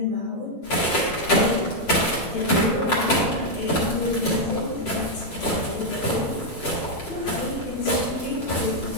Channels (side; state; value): right; late; 7.9 ms